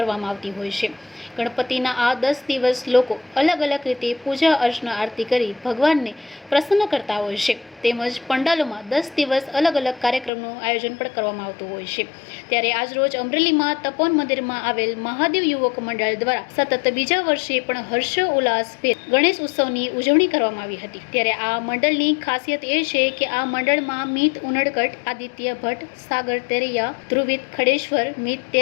આવતી હોય છે। ગણપતિના આ 10 દિવસ લોકો અલગ અલગ રીતે પૂજા અર્ચના આરતી કરી ભગવાનને પ્રસન્ન કરતા હોય છે। તેમજ પંડાલોમાં 10 દિવસ અલગ અલગ કાર્યક્રમનું આયોજન પણ કરવામાં આવતું હોય છે। ત્યારે આજરોજ અમરેલીમાં તપોવન મંદિરમાં આવેલ મહાદેવ યુવક મંડળ દ્વારા સતત બીજા વર્ષે પણ હર્ષોલ્લાસભેર ગણેશ ઉત્સવની ઉજવણી કરવામાં આવી હતી। ત્યારે આ મંડળની ખાસિયત એ છે કે આ મંડળમાં મિત ઉનડકટ, આદિત્ય ભટ્ટ, સાગર તેરૈયા, ધ્રુવિત ખડેશ્વર, મિત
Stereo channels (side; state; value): right; drops out; at 10.3 s